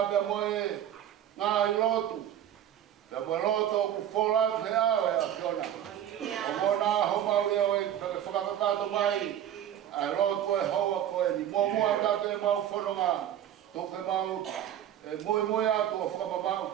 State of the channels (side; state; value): left; quieter; 10.7 dB